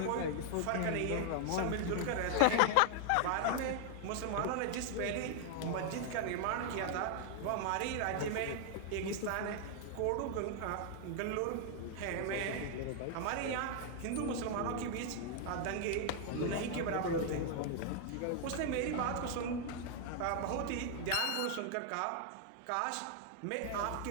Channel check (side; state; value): both; different; correlation 0.00